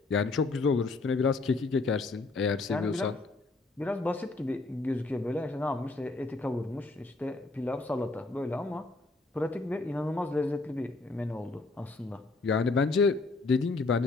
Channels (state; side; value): quieter; right; 3.5 dB